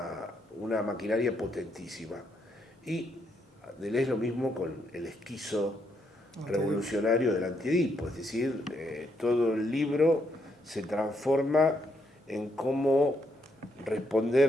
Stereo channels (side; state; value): both; normal; correlation 0.76